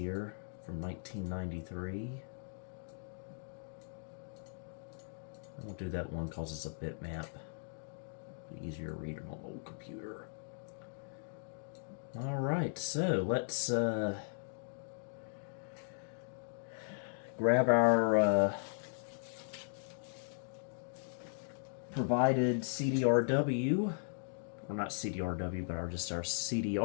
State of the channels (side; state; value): right; silent; digital silence